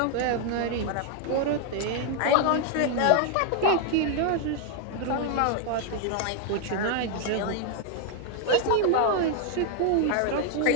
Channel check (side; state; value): both; different; correlation 0.00